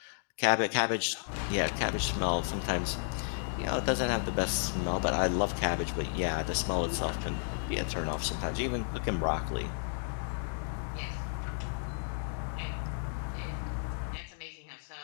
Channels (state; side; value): silent; right; digital silence